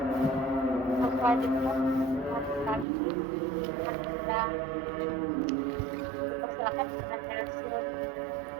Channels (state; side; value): drops out; left; at 2.9 s